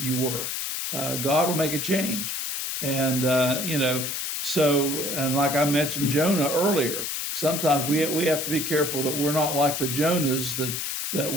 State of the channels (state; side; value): noise; left; hiss, 3 dB below the sound